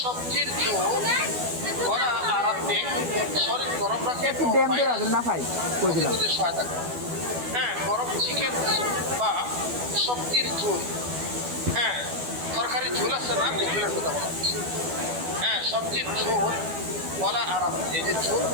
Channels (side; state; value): left; late; 12 ms